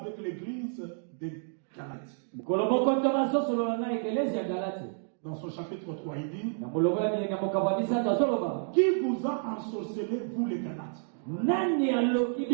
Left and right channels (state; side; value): silent; left; digital silence